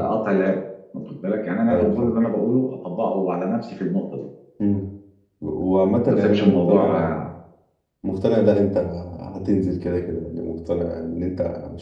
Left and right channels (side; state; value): both; identical; correlation 1.00